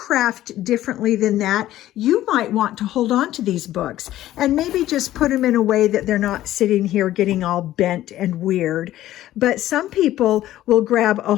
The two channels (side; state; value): right; quieter; 14.0 dB